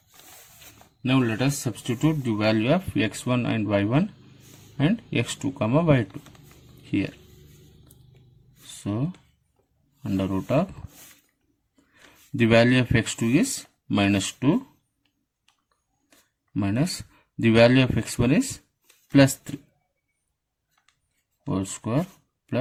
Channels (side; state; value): both; identical; correlation 1.00